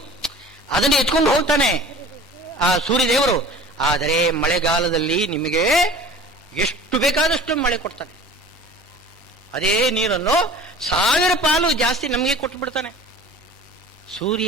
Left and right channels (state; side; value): normal; both; correlation 0.43